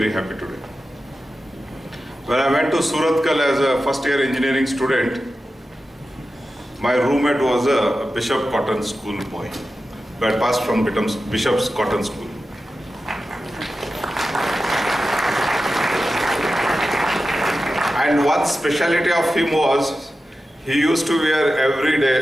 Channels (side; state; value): both; normal; correlation 0.93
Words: happy today. When I went to Surathkal as a first-year engineering student, my roommate was a Bishop Cotton School boy. I passed from Bishop's Cotton School. And one speciality of him was, he used to wear every